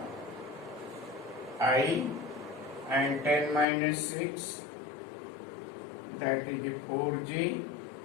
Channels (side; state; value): right; drops out; at 3.7 s